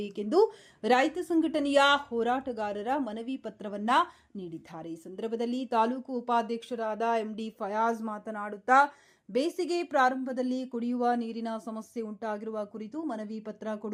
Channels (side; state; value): both; identical; correlation 1.00